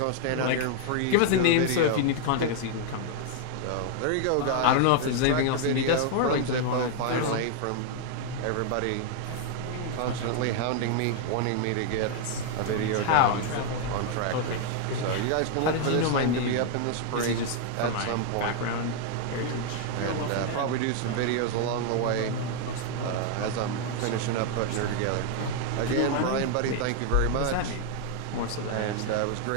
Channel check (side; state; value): both; different; correlation 0.00